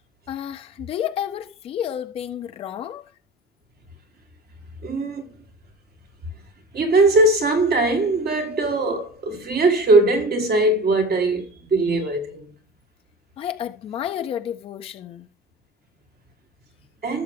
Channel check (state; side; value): normal; both; correlation 0.34